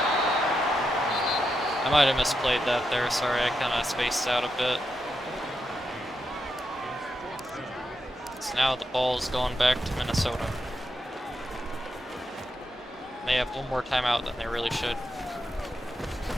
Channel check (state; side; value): normal; both; correlation 0.85